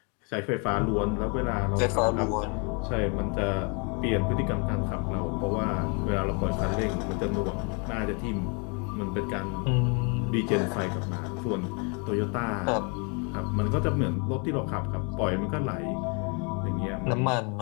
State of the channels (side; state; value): right; quieter; 34.8 dB